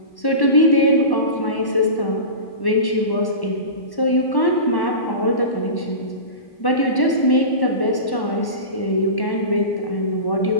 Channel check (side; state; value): right; late; 1.1 ms